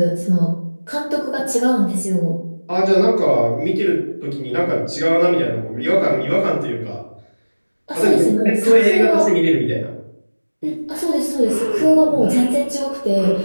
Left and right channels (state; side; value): inverted; both; correlation -1.00